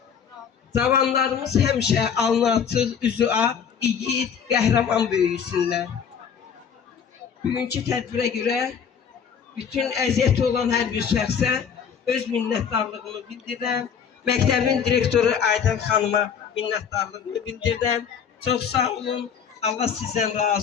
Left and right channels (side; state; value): right; quieter; 7.4 dB